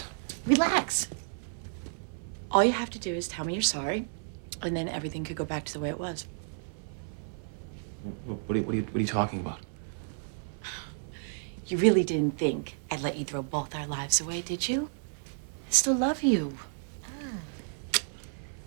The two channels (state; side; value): silent; left; 57 dB below the other